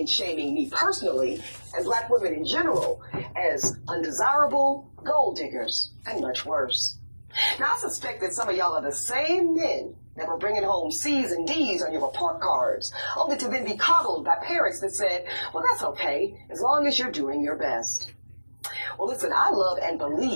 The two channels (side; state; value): both; inverted; correlation -1.00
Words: shaming me personally and black women in general as undesirable, gold diggers, and much worse. Now, I suspect that some of y'all are the same men that were bringing home C's and D's on your report cards, only to then be coddled by parents that said, well, that's okay, as long as you're doing your best. Well, listen, I love and